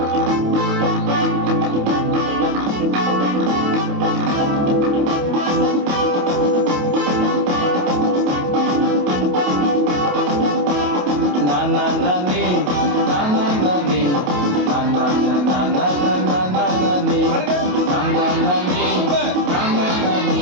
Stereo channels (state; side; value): late; left; 28 ms